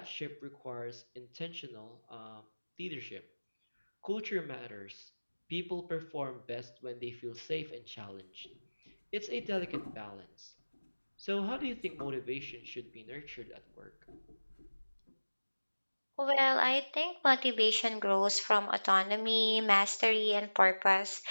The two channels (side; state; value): both; inverted; correlation -1.00